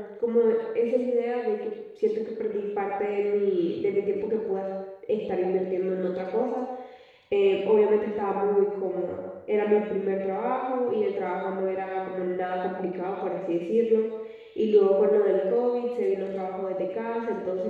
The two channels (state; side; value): identical; both; correlation 1.00